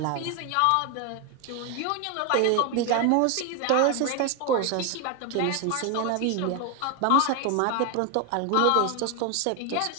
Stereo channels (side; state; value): both; different; correlation 0.01